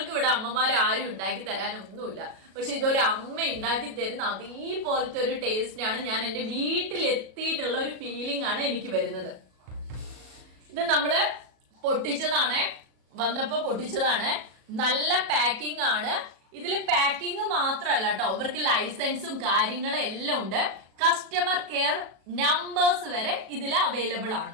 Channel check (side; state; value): left; late; 37 ms